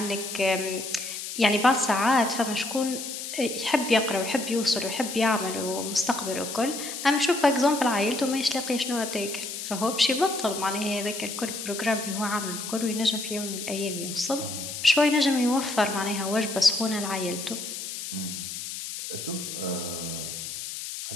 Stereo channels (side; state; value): left; noise; hiss, 7 dB below the sound